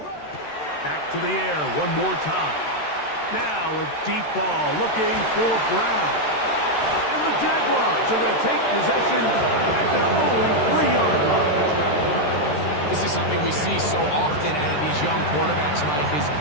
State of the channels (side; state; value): right; late; 13 ms